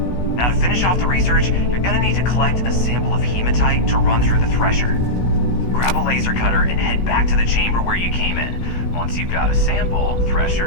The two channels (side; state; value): right; late; 16 ms